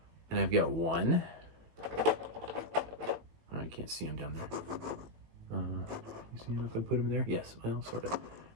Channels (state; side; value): late; left; 19 ms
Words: And I've got 1. Oh, I can't see him down there. You see him if I put him there? Yes, well, sort of.